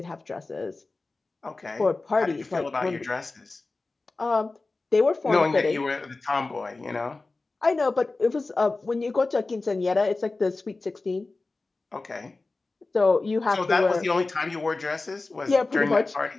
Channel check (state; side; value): quieter; right; 3.5 dB